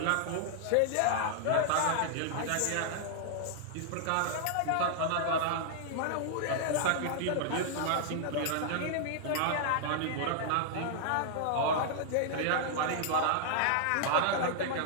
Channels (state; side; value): different; both; correlation -0.01